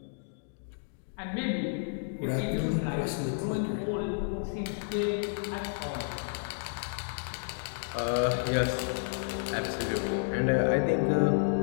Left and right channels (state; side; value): silent; right; digital silence